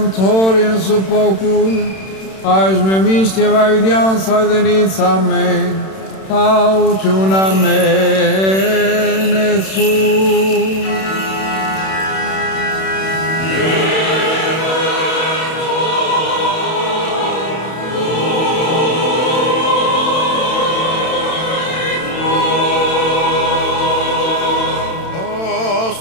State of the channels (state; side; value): late; right; 31 ms